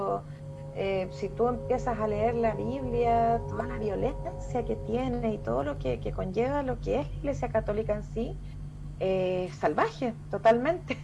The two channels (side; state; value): both; identical; correlation 1.00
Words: Si tú empiezas a leer la Biblia, toda la violencia que tiene y todo lo que conlleva lo que es la iglesia católica en sí, salvaje, totalmente.